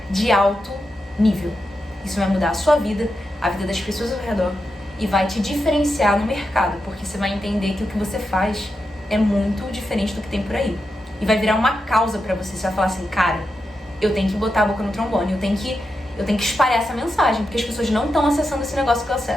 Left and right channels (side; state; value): both; normal; correlation 0.87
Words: de alto nível. Isso vai mudar a sua vida, a vida das pessoas ao redor, e vai te diferenciar no mercado, porque você vai entender que o que você faz é muito diferente do que tem por aí. E vai virar uma causa pra você. Você vai falar assim, cara, eu tenho que botar a boca no trombone, eu tenho que espalhar essa mensagem, porque as pessoas não estão acessando esse negócio que eu